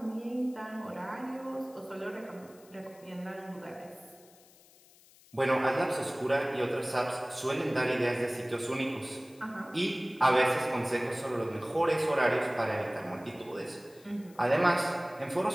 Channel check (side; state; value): left; noise; hiss, 26 dB below the sound